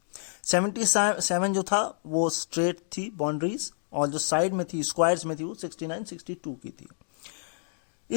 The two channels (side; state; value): right; silent; digital silence